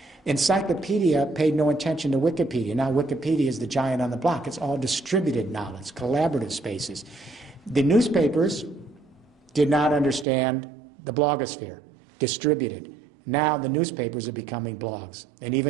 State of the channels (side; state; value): left; drops out; at 10.2 s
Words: Encyclopedia paid no attention to Wikipedia. Now Wikipedia is the giant on the block. It's all distributed knowledge, collaborative spaces. The newspapers did not understand the blogosphere, distributed. Now the newspapers are becoming blogs, and